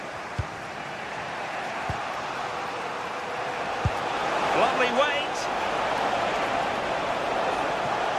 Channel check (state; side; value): identical; both; correlation 1.00